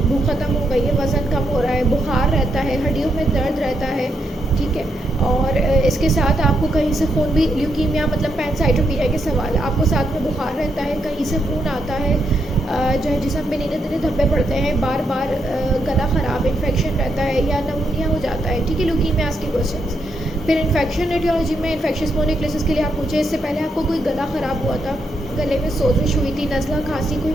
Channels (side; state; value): both; normal; correlation 0.79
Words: भूख ख़त्म हो गई है, वज़न कम हो रहा है, बुखार रहता है, हड्डियों में दर्द रहता है, ठीक है। और इसके साथ आपको कहीं से खून भी, ल्यूकीमिया मतलब पैनसाइटोपीनिया के सवाल है, आपको साथ में बुखार रहता है, कहीं से खून आता है, जो है जिसम में नीले नीले धब्बे पड़ते हैं, बार बार गला ख़राब, इन्फेक्शन रहता है या नमूनिया हो जाता है, ठीक है, ल्यूकीमियास के क्वेश्चंस। फिर इन्फेक्शन एटियोलॉजी में इन्फेक्शियस मोनोन्यूक्लियोसिस के लिए आप पूछे, इससे पहले आपको कोई गला ख़राब हुआ था, गले में सोजिश हुई थी, नज़ला, खांसी, कोई